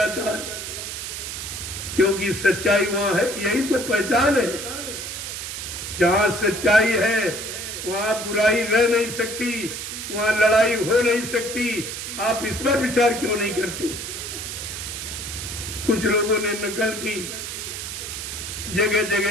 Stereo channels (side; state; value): right; noise; hiss, 6 dB below the sound